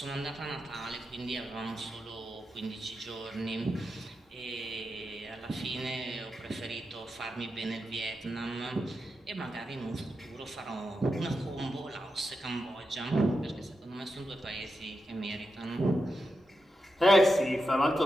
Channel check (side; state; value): both; normal; correlation 0.88